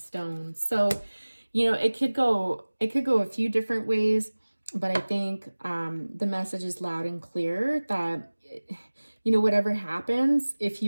So, you know, it could go a few different ways, but I think the message is loud and clear that, you know, whatever happens, if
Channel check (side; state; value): both; inverted; correlation -1.00